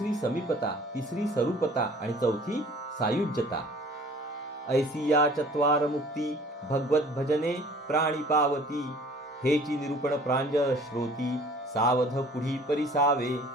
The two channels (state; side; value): normal; both; correlation 0.50